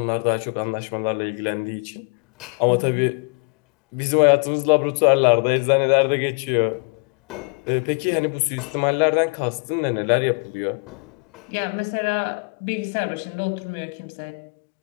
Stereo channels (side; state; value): right; quieter; 37.7 dB